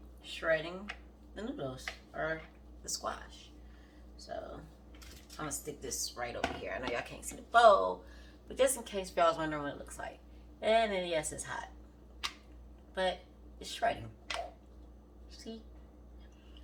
shredding the noodles or the squash. So I'm gonna stick this right over here. I know y'all can't see the bowl, but just in case y'all was wondering what it looks like. And then yes, it's hot, but it's shredding. See?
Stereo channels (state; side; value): identical; both; correlation 1.00